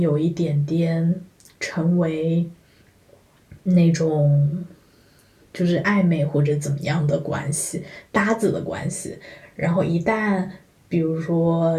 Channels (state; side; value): identical; both; correlation 1.00